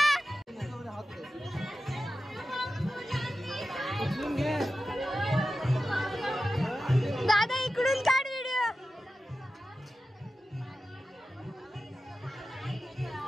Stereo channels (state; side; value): normal; both; correlation 0.93